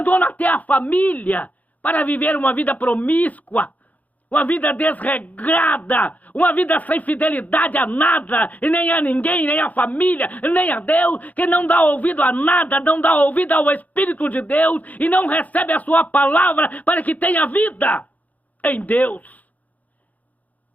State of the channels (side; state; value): right; late; 0.077 ms